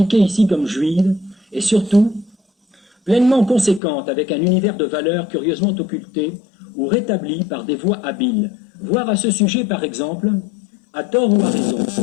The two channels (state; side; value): drops out; right; at 3.8 s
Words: ici comme juive, et surtout pleinement conséquente avec un univers de valeurs curieusement occulté ou rétabli par des voies habiles. Voir à ce sujet, par exemple, à tort ou à raison,